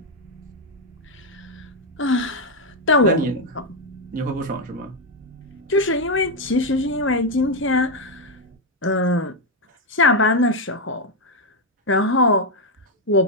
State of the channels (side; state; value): both; normal; correlation 0.04